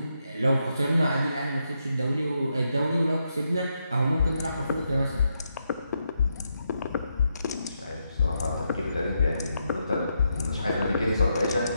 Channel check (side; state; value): both; inverted; correlation -0.82